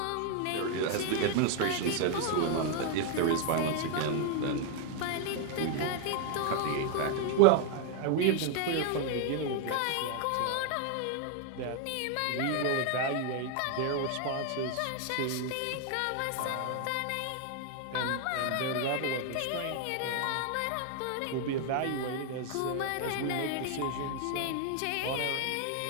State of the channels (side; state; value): both; different; correlation 0.01